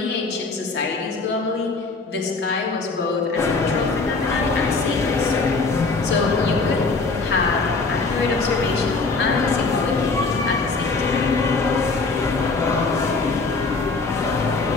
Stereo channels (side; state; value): right; quieter; 3.9 dB